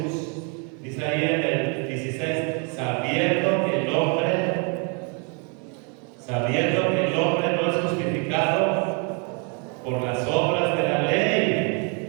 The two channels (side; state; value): left; quieter; 36.6 dB